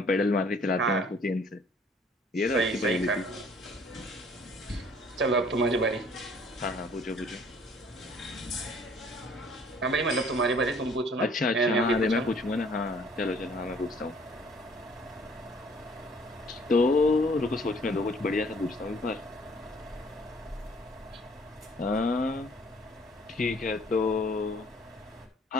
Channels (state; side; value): normal; both; correlation 0.58